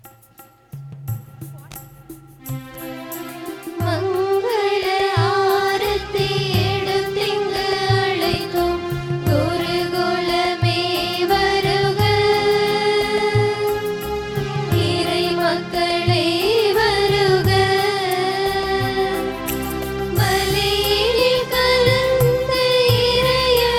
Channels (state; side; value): identical; both; correlation 1.00